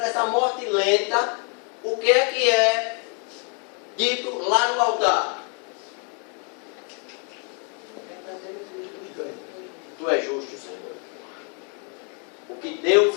morte lenta, o que é dito lá no altar? Tu és justo, Senhor. O que Deus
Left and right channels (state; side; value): quieter; right; 38.4 dB